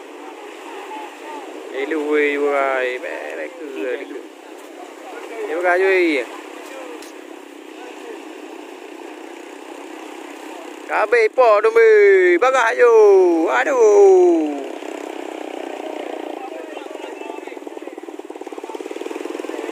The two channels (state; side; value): identical; both; correlation 1.00